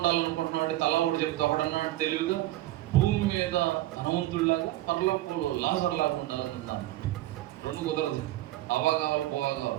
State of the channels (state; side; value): quieter; left; 16.0 dB